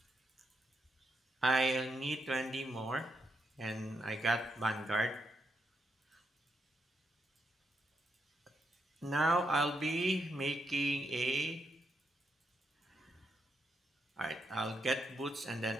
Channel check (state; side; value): normal; both; correlation 0.81